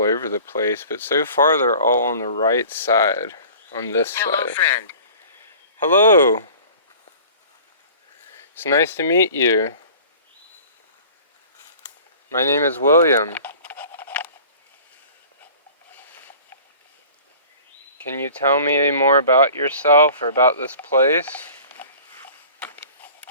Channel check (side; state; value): both; inverted; correlation -0.44